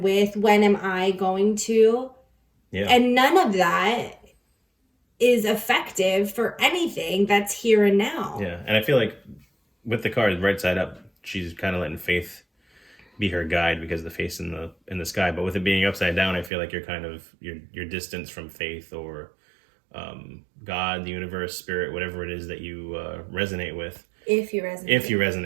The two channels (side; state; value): left; drops out; at 16.5 s